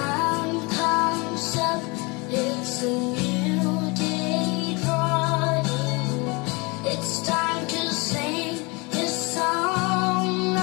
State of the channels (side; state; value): right; quieter; 27.3 dB